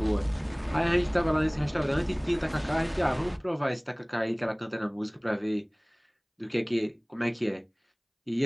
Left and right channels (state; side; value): identical; both; correlation 1.00